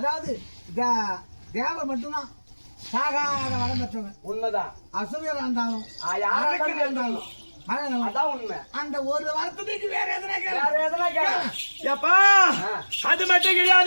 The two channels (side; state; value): both; inverted; correlation -1.00